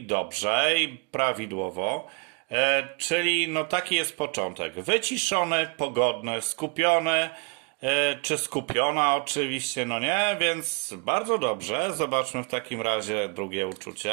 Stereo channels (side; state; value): left; quieter; 36.3 dB